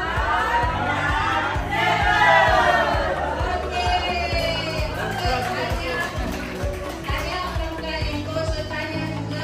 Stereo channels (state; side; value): identical; both; correlation 1.00